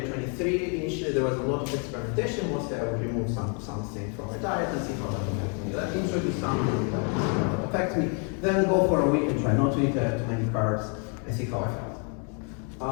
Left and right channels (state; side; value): quieter; right; 39.2 dB